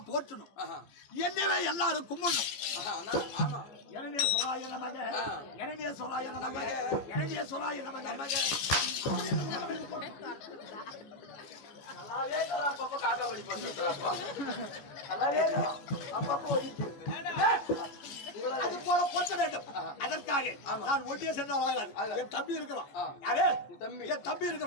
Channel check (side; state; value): right; late; 14 ms